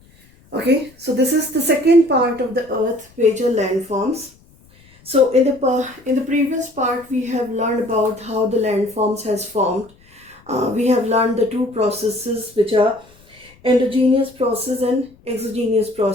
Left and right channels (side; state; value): left; noise; rumble, 28 dB below the sound